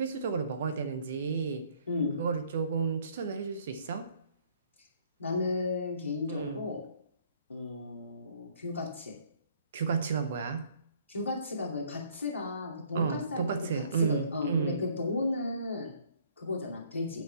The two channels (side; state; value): both; inverted; correlation -0.61